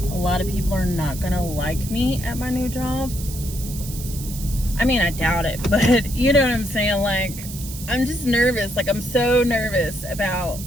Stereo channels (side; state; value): right; noise; hiss, 12 dB below the sound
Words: a lot of people are not gonna like me at my new job. I mean, I doubt it, but you know what I'm saying? Like, I'm just nervous. Like, I'm so nervous about